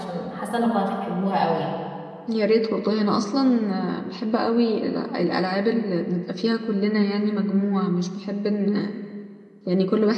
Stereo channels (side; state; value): both; identical; correlation 1.00